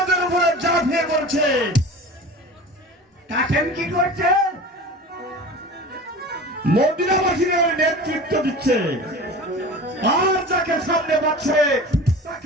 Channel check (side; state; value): both; normal; correlation 0.36